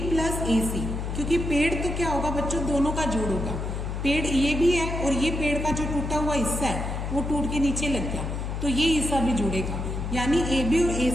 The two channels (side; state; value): left; noise; hum, 3 dB below the sound